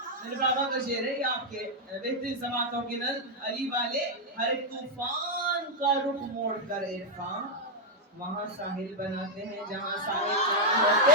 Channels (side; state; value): both; normal; correlation -0.03